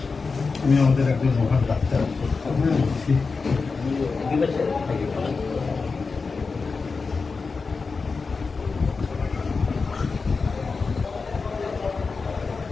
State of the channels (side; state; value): right; quieter; 4.5 dB